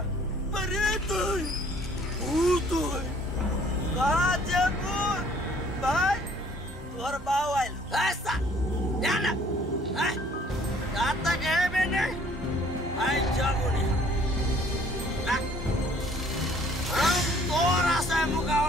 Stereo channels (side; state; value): both; normal; correlation 0.58